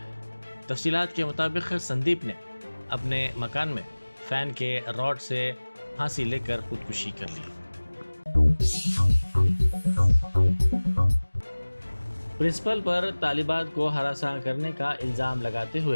تفصیلات کے مطابق سندیپ نے اپنے مکان میں فین کے راڈ سے پھانسی لے کر خودکشی کر لی۔ پرنسپل پر طالبات کو ہراساں کرنے کا الزام لگاتے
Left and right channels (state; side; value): inverted; both; correlation -1.00